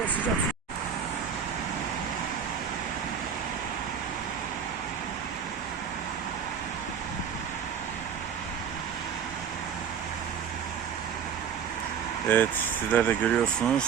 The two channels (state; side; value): quieter; left; 7.5 dB